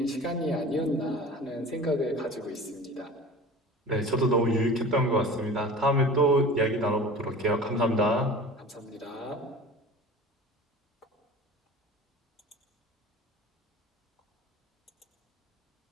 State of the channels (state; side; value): normal; both; correlation 0.39